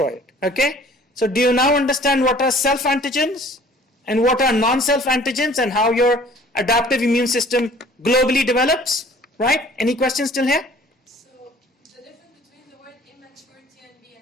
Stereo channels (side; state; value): both; normal; correlation 0.52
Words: it. Okay? So do you now understand what are self-antigens and what are non-self antigens and how your adaptive immune system globally develops? Right? Any questions still here? So the difference between the word immature TNB